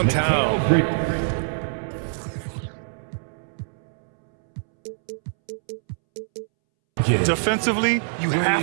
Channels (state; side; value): silent; left; 63 dB below the other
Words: Defensively, you have